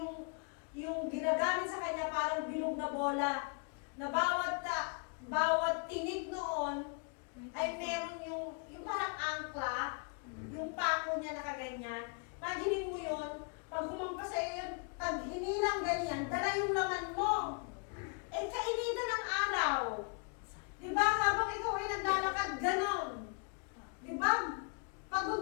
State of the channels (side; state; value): right; quieter; 39.7 dB